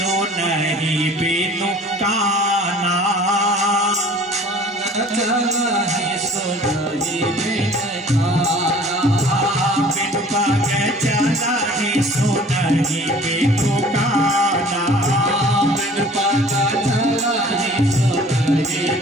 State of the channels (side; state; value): both; normal; correlation 0.49